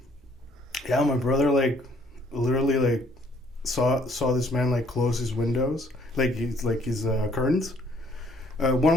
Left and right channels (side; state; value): both; normal; correlation 0.63